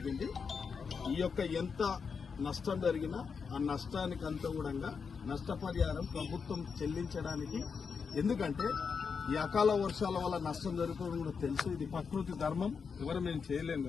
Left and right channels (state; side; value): quieter; right; 5.8 dB